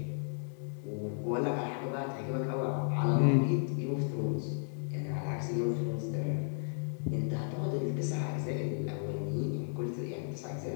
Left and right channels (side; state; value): right; silent; 55 dB below the other